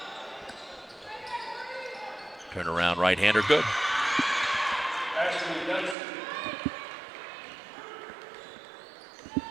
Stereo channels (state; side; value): drops out; left; at 6.0 s